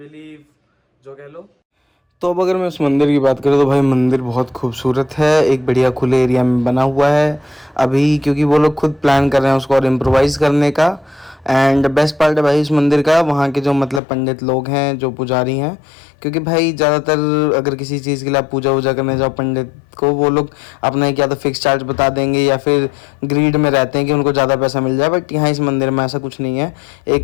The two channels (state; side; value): drops out; right; at 14.0 s